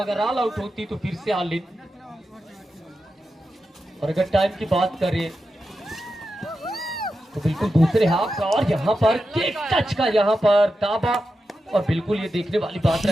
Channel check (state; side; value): normal; both; correlation 0.90